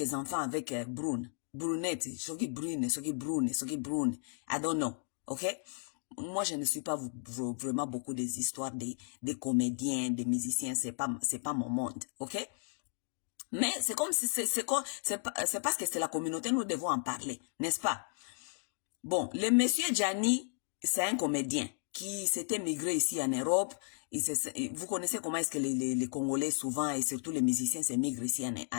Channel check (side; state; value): right; silent; digital silence